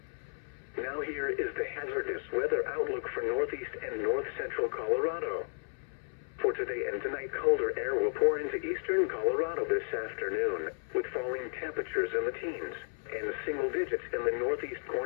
Now here is the hazardous weather outlook for northeast and north central Colorado. For today and tonight, colder air will pour into eastern Colorado this afternoon, with falling temperatures in the teens and single digits in the northeast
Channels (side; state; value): right; silent; 56 dB below the other